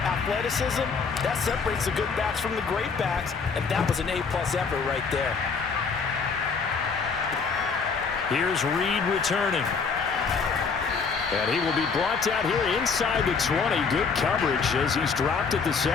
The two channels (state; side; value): quieter; right; 5.3 dB